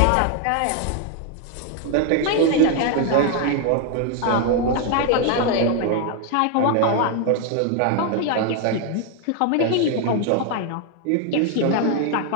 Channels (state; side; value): different; both; correlation 0.01